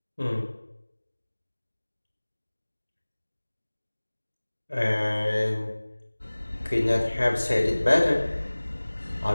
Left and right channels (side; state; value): both; inverted; correlation -1.00